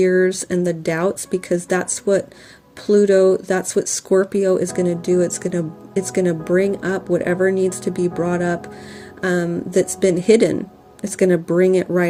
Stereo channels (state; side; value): identical; both; correlation 1.00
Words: and the doubts, because that's what Pluto, that's what Scorpio is going to do. It's going to bring up whatever needs to be brought up that's been hidden. It's going to bring it